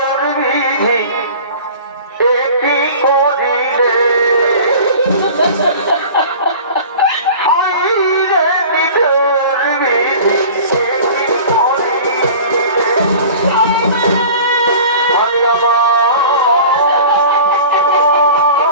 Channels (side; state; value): both; inverted; correlation -0.40